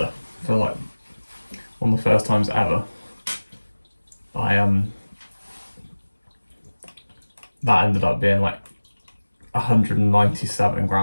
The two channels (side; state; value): both; inverted; correlation -1.00